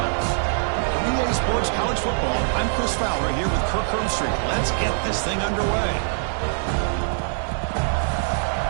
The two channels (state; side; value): silent; left; digital silence